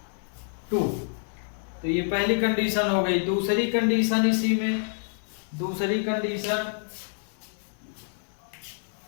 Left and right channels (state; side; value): silent; right; digital silence